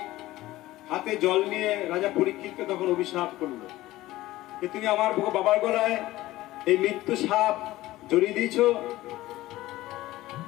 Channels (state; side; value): quieter; right; 16.9 dB